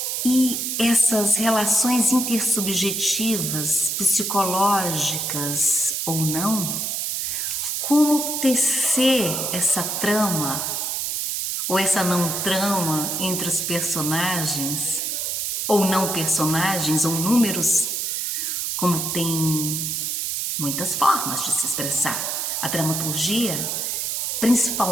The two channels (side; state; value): right; noise; hiss, 1 dB below the sound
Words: E essas relações intersubjetivas, psicológicas ou não, como tecer essa trama ou essa não trama entre os personagens, ou não personagens, ou números, como tem muitas formas de se expressar. A dramaturgia,